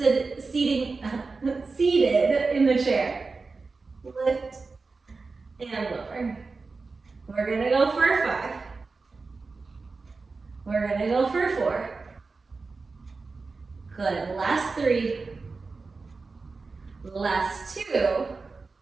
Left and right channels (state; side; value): quieter; left; 4.1 dB